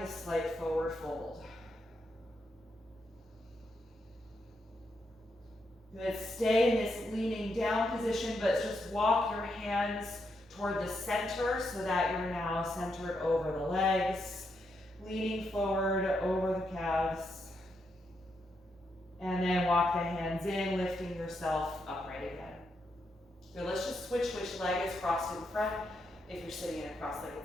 a slight forward fold. Good, stay in this leaning down position, but just walk your hands toward the center so that you're now centered over the legs, leaning forward over the calves. And then walk the hands in, lifting yourself upright again. Good, let's just switch which leg is crossed in front if you're sitting in a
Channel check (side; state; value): both; normal; correlation 0.81